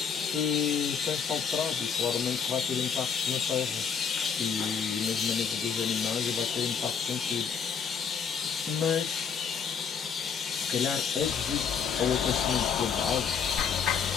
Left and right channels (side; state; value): right; quieter; 6.7 dB